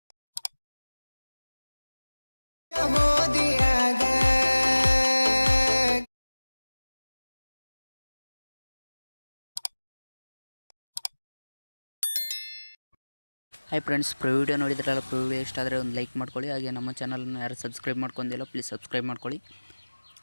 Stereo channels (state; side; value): inverted; both; correlation -1.00